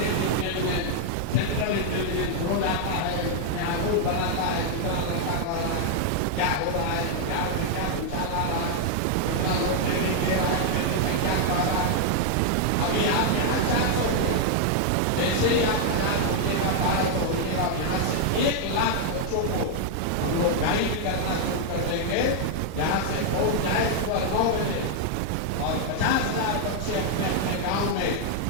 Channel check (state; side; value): different; both; correlation 0.00